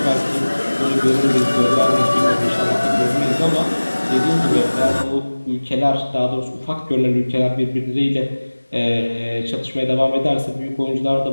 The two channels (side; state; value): both; inverted; correlation -1.00